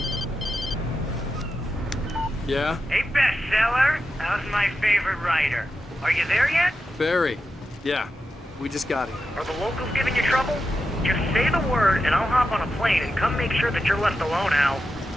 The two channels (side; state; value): both; normal; correlation 0.89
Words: Yeah? Hey, bestseller. How's my favorite writer? Are you there yet? Barry. Yeah, we just got here. Are the locals giving you trouble? Just say the word and I'll hop on a plane and come make sure that you're left alone, Al.